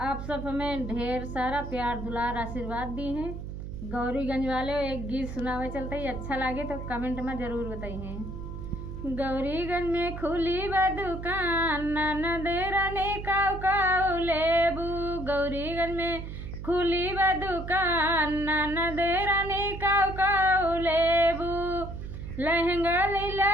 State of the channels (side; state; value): right; noise; hum, 8 dB below the sound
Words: सब हमें ढेर सारा प्यार दुलार आशीर्वाद दी हैं। गौरीगंज वाले एक गीत सुनावे चलते ही, अच्छा लगे तो कमेंट में ज़रूर बताइए। गौरीगंज में खुली बा दुकान, ननदे रानी काऊ काऊ लेबू। गौरीगंज में खुली बा दुकान, ननदे रानी काऊ काऊ लेबू। लहंगा